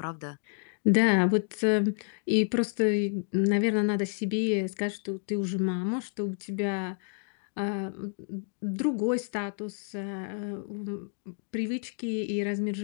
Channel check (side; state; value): right; silent; 58 dB below the other